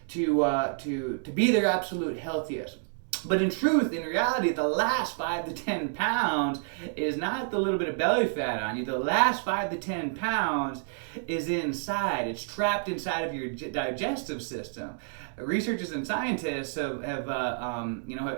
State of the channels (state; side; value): silent; left; digital silence